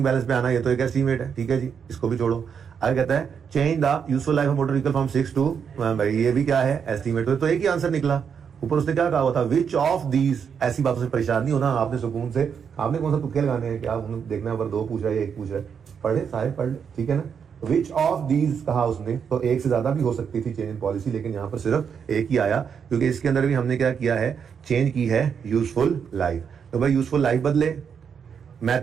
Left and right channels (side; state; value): left; quieter; 7.0 dB